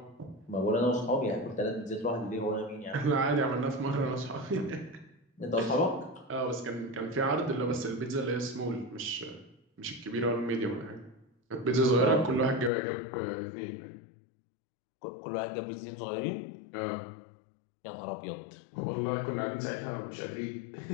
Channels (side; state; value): right; drops out; at 12.7 s